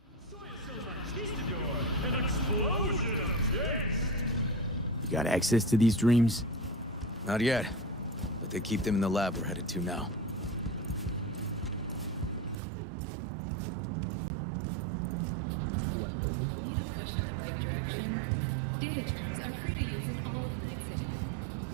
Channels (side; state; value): left; drops out; at 12.6 s